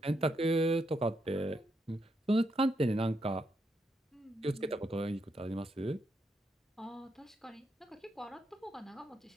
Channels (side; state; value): both; normal; correlation 0.80